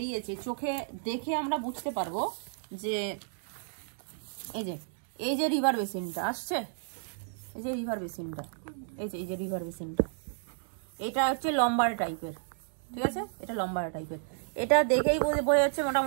চোখে দেখে আমরা বুঝতে পারবো যে এই যে রিভার বেসিনটা আসছে, এই যে রিভার বেসিনটা, এই যে রিভার বেসিনটা, এটা হচ্ছে লম্বার টাইপের। ঠিক আছে, এটা লম্বার টাইপের। এটা দেখেই বোঝা যাচ্ছে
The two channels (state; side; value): silent; left; digital silence